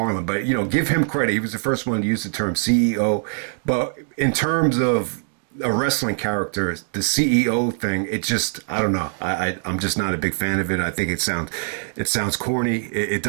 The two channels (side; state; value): left; silent; digital silence